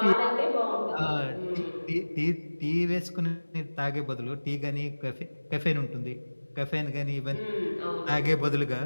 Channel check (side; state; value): both; inverted; correlation -1.00